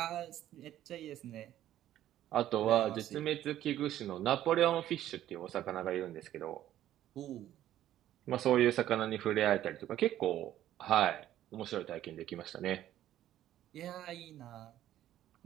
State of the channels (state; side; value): quieter; left; 12.6 dB